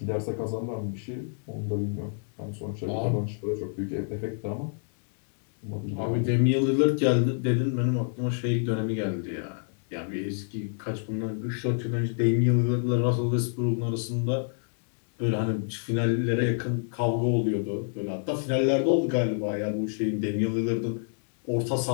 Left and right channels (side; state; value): right; silent; digital silence